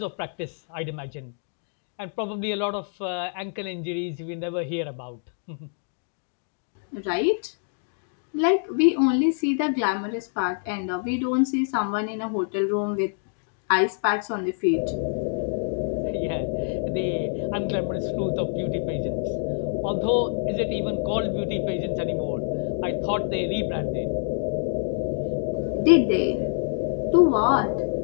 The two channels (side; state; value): right; silent; 61 dB below the other